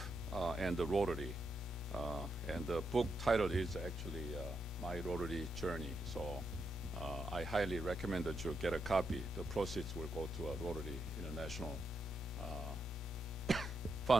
and the Rotary. And the book title is actually My Rotary Journey. So I highly recommend that you get a copy. The proceeds will go to a Rotary International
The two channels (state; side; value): normal; both; correlation 0.82